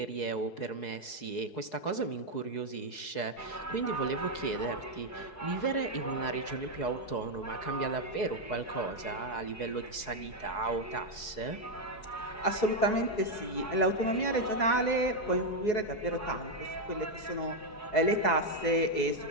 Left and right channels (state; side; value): late; right; 4.7 ms